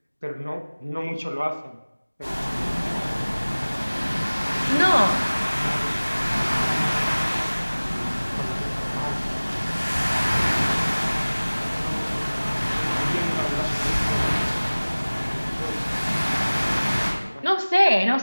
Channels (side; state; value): both; inverted; correlation -1.00